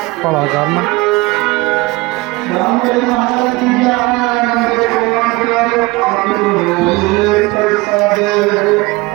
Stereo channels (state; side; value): quieter; left; 22.4 dB